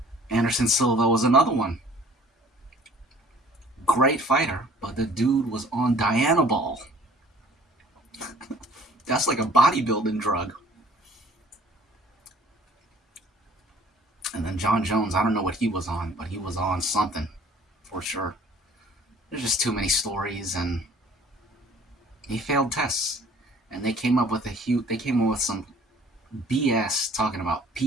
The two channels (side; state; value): both; normal; correlation 0.53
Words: Anderson Silva was another one. Great fighter, but the dude was on Dianabol. That's like a bodybuilding drug. And then John Jones, I don't know what he was on, but he was on something for sure. There's just too many stories, and he failed tests. And they came up with some BS talking about